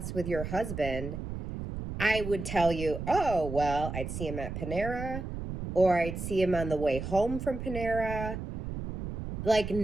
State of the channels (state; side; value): noise; right; rumble, 6 dB below the sound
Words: with your husband? I would tell you, oh, well, I'd see him at Panera, or I'd see him on the way home from Panera. Like